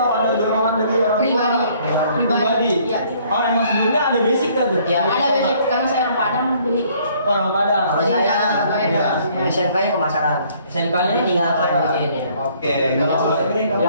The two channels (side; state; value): both; inverted; correlation -0.61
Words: ada dorongan dari orang tua? Pribadi. Ya. Oh emang sebelumnya ada basic kan tuh? Ya, Ada basic karena saya orang Padang, jadi Orang Padang. Kalau Jadi saya jangan bayar. ya, SMK-nya pemasaran. SMK-nya Jadi tinggal lanjutin ya. Oke. Ya,